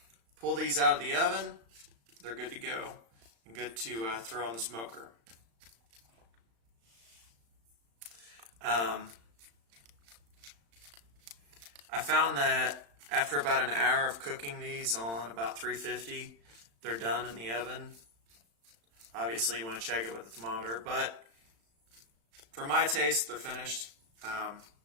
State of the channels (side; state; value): left; late; 35 ms